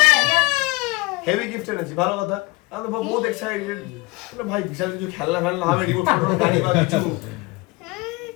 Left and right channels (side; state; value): right; quieter; 23.5 dB